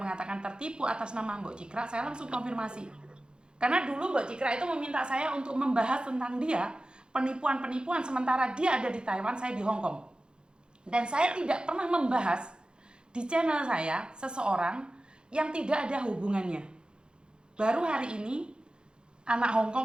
tertipu atas nama Mbok Cikra, saya langsung konfirmasi. Karena dulu Mbok Cikra itu meminta saya untuk membahas tentang dia, penipuan-penipuan, sementara dia ada di Taiwan, saya di Hong Kong. Dan saya tidak pernah membahas di channel saya seseorang yang tidak ada hubungannya. Baru hari ini anak Hong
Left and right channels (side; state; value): left; late; 0.050 ms